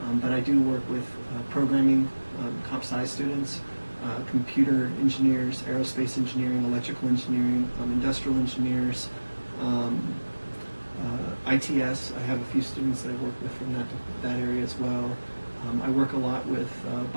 But I do work with programming, comp sci students, computer engineers, aerospace engineering, electrical engineering, industrial engineers, ITS. I have a few students that I work with from that area as well. I work a lot with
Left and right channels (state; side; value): inverted; both; correlation -1.00